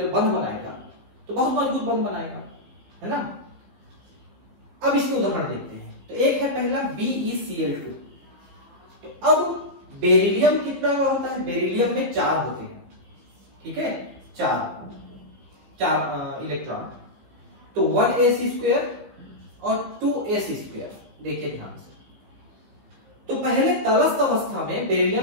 बंध बनाएगा, तो बहुत मजबूत बंध बनाएगा, है ना। अब इसके उदाहरण देखते हैं। तो एक है पहला BeCl2। तो अब बेरिलियम कितना का होता है? बेरिलियम में 4 होते हैं। ठीक है, 4 इलेक्ट्रॉन, तो 1s² और 2s²। देखिए ध्यान से, तो पहले तलस्थ अवस्था में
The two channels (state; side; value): late; left; 15 ms